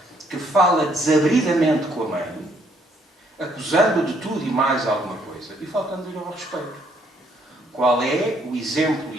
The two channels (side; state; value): both; normal; correlation 0.68